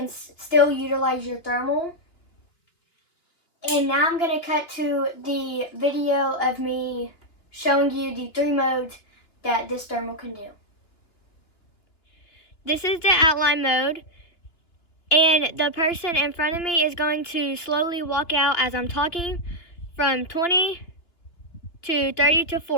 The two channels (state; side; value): late; right; 3.1 ms